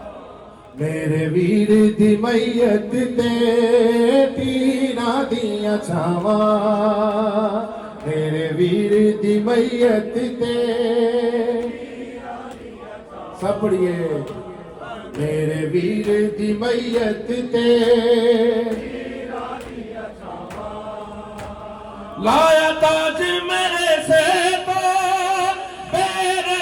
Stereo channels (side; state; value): both; identical; correlation 1.00